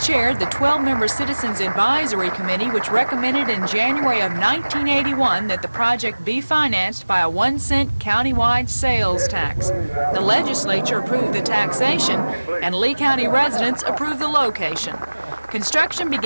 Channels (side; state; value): both; inverted; correlation -1.00